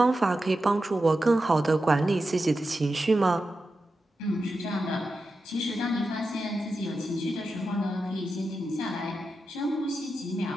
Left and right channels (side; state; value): both; normal; correlation 0.90